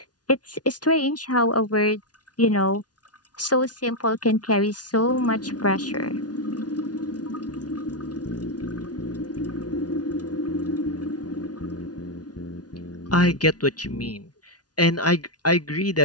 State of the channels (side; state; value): right; late; 0.69 ms